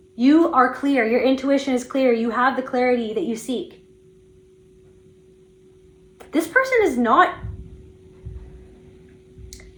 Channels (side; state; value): both; identical; correlation 1.00